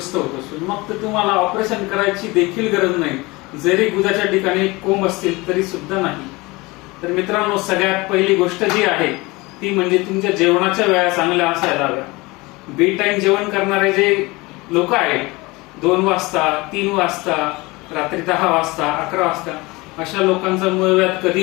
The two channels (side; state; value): right; quieter; 23.2 dB